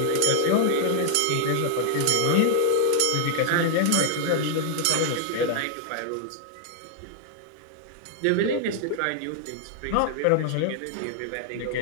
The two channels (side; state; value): both; different; correlation 0.00